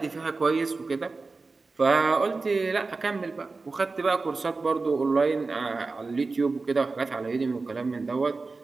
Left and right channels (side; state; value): left; quieter; 3.9 dB